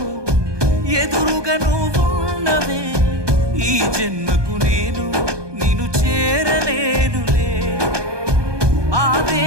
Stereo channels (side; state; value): left; late; 1.2 ms